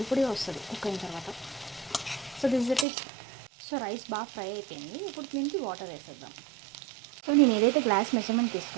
పొడిగా వస్తుంది కుక్ అయిన తర్వాత. So this is it. So rice బాగా ఫ్రై అయిపోయింది. ఇప్పుడు దీనికి వాటర్ వేసేద్దాం. సో నేను ఏదైతే గ్లాస్ మెజర్మెంట్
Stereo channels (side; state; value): left; drops out; at 2.9 s